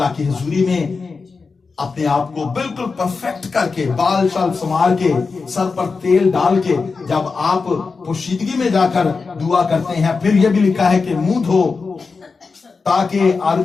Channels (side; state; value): right; quieter; 4.6 dB